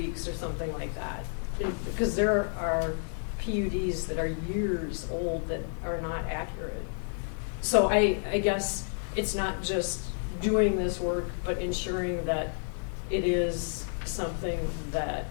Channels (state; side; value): silent; right; 58 dB below the other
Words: or something like that. Because there are PUDs that are years old that are not accurate. So I guess it's not just doing this work, but ensuring that it is something that